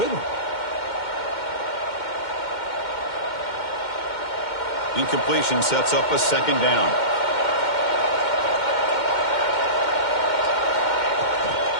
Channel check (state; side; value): late; right; 2.1 ms